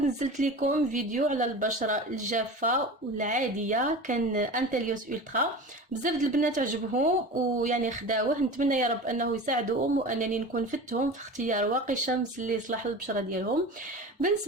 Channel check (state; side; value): normal; both; correlation 0.33